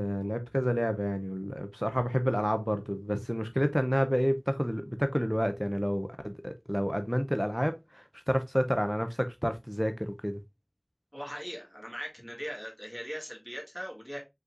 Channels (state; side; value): identical; both; correlation 1.00